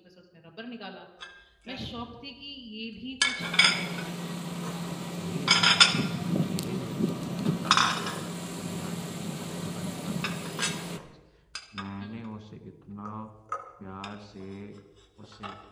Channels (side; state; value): both; identical; correlation 1.00